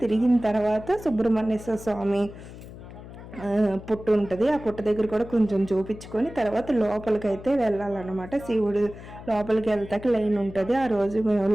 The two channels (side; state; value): left; noise; hum, 15 dB below the sound